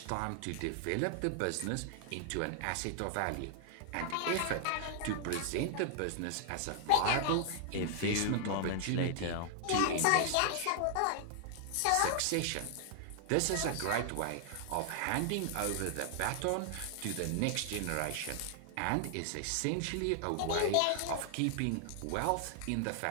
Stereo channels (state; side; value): different; both; correlation 0.00